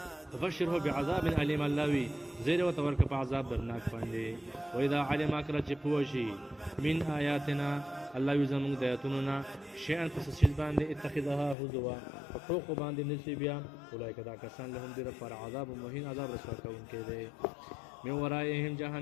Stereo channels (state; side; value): drops out; right; at 11.6 s